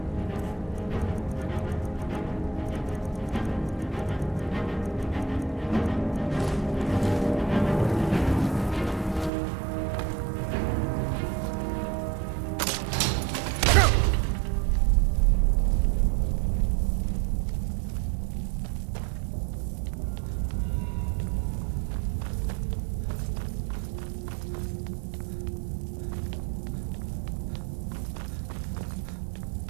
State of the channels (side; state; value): left; drops out; at 9.3 s